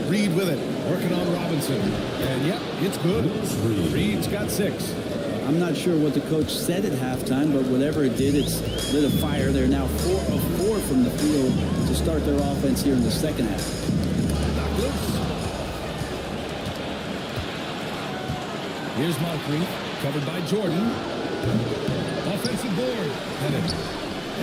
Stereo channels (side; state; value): both; identical; correlation 1.00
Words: Reed with it, working on Robinson. And yep, it's good. Reed's got 6. I'm not sure what the coach said at halftime, but whatever it did, it's lit a fire. They're now 4 of 4 from the field to start their offense here in the second half. Knocked loose. Here's Moncrief, covered by Jordan. Offensive board. Pettit.